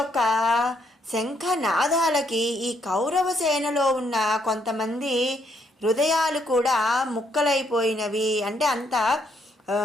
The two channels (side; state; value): both; normal; correlation 0.73